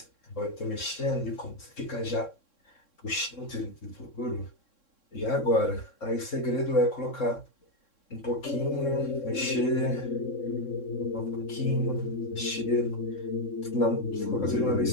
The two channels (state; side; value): late; right; 3.6 ms